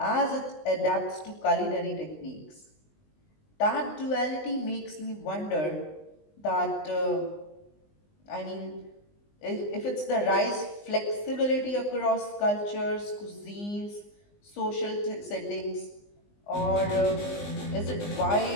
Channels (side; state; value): right; late; 20 ms